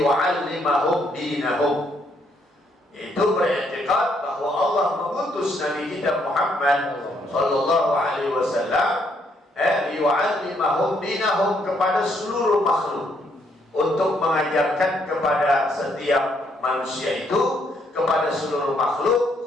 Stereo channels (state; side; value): normal; both; correlation 0.72